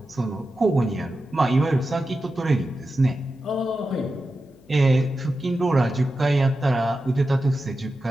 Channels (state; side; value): noise; left; hum, 29 dB below the sound